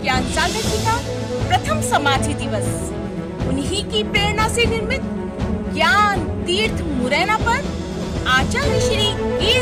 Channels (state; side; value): identical; both; correlation 1.00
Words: ज्ञान सागर जी का प्रथम समाधि दिवस उन्हीं की प्रेरणा से निर्मित ज्ञान तीर्थ मुरैना पर आचार्य श्री